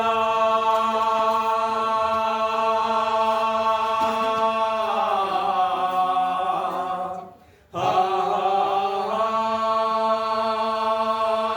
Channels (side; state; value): both; identical; correlation 1.00